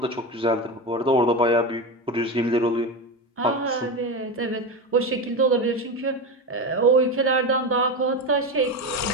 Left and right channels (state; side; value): normal; both; correlation 0.19